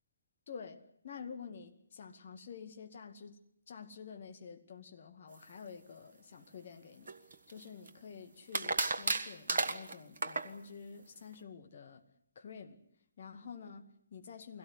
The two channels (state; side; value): inverted; both; correlation -0.79